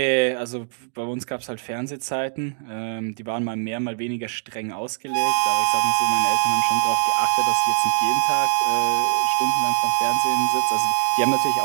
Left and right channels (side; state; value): left; silent; digital silence